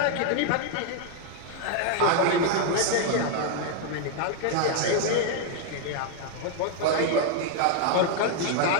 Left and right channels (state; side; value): different; both; correlation 0.00